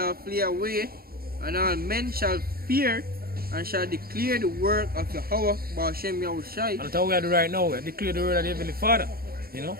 flee away, and all men shall fear and shall declare the work of Yahweh Ba'ashem Yahushai. And that's what we are doing right now. We are declaring the word of the Heavenly Father. You know?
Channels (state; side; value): late; left; 0.44 ms